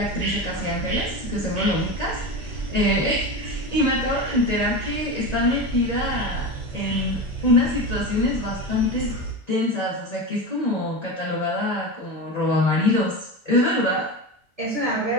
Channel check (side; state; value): both; normal; correlation 0.23